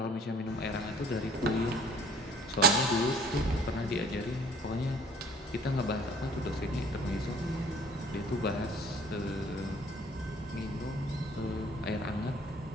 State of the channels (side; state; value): both; normal; correlation 0.53